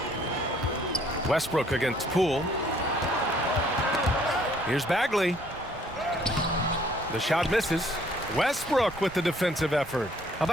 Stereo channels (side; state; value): right; noise; rumble, 19 dB below the sound